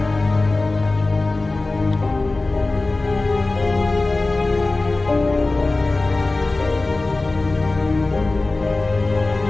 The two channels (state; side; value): quieter; right; 3.2 dB